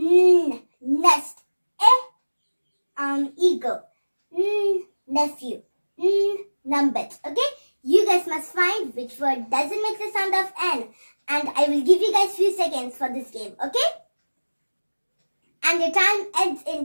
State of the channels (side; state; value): both; inverted; correlation -1.00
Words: Nest. Eagle. Nephew. Numbet. Okay? You guys must find which word doesn't make the sound of N. And I will give you guys few seconds for this game, okay? And your time ends